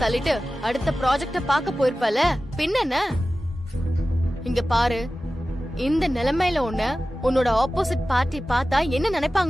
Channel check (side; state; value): both; normal; correlation 0.95